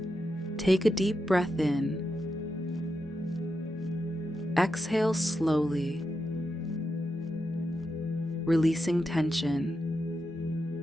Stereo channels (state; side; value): normal; both; correlation 0.87